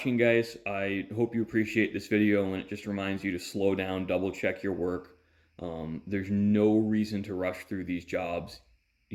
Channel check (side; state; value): both; identical; correlation 1.00